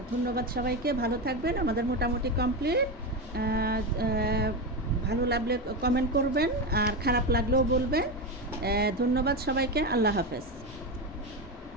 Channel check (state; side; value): normal; both; correlation 0.15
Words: ধন্যবাদ সবাইকে, ভালো থাকবেন। আমাদের মোটামুটি কমপ্লিট। ভালো লাগলে কমেন্ট করবেন, আর খারাপ লাগলেও বলবেন। ধন্যবাদ সবাইকে, আল্লাহ হাফেজ।